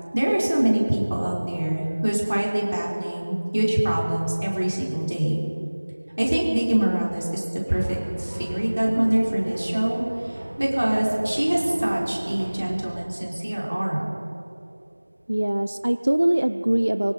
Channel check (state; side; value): inverted; both; correlation -1.00